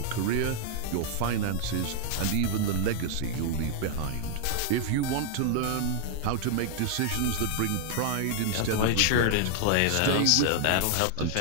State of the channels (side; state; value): both; different; correlation -0.01